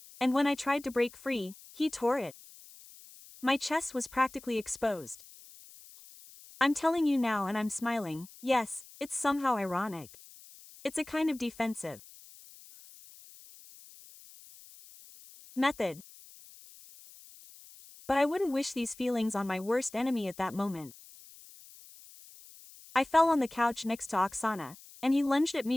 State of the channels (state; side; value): noise; left; hiss, 21 dB below the sound